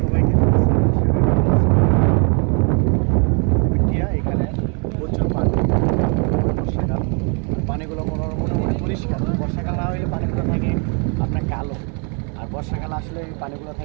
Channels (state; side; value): quieter; left; 37.9 dB